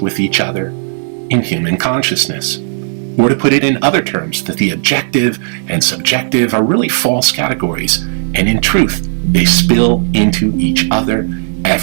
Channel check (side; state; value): left; silent; digital silence